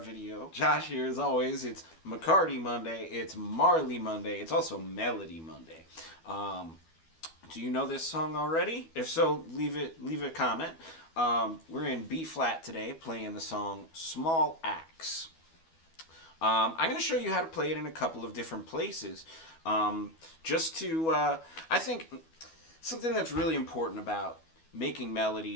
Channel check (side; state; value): right; late; 12 ms